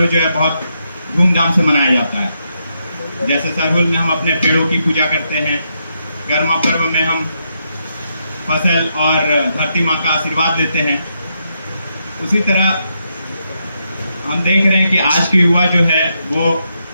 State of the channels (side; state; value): both; inverted; correlation -0.81